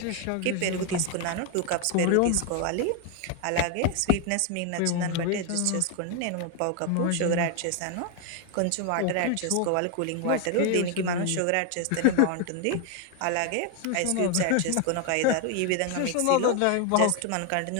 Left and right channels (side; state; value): both; different; correlation 0.01